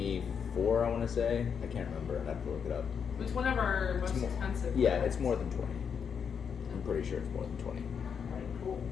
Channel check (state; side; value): quieter; right; 6.9 dB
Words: I want to say. I can't remember. I'd have to look it up. It's one of our most more- expensive. Yeah, it's more than 20. I'm pretty sure it's more than 20. Alright, cool.